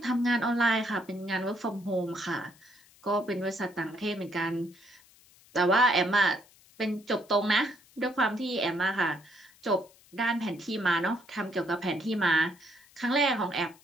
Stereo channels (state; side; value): noise; left; hiss, 27 dB below the sound